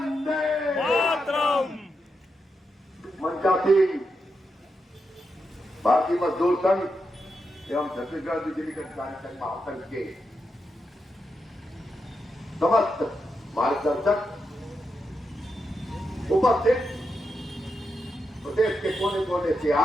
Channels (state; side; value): normal; both; correlation 0.85